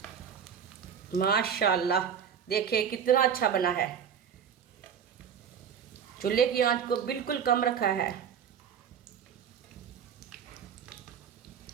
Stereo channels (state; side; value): quieter; left; 7.8 dB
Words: माशाल्लाह, देखिए कितना अच्छा बना है। चूल्हे की आंच को बिल्कुल कम रखा है।